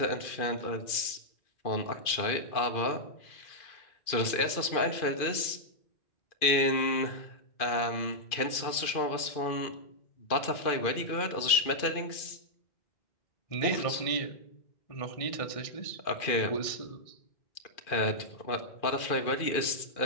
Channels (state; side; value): late; right; 2.4 ms